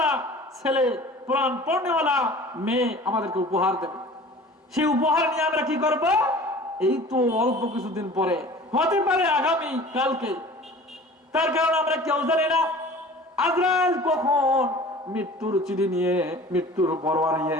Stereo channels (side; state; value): both; normal; correlation 0.43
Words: ছেলে, কোরআন পড়নেওয়ালা মেয়ে আমাদেরকে উপহার দেবে। সেই উপহার নিয়ে আমরা কি করব? এই তো অল্প কিছুদিন পরে, হতে পারে আগামী কালকে। তার কারণ আমরা কেউ জানি না আজরাইল কখন মৃত্যুর চিঠি নিয়ে, মৃত্যুর পরোয়া নিয়ে,